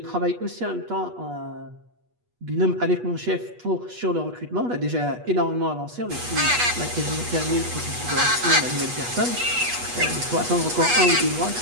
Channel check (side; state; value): left; late; 8.3 ms